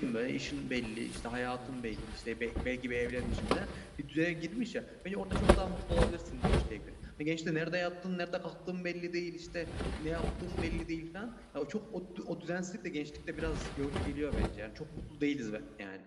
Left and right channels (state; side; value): identical; both; correlation 1.00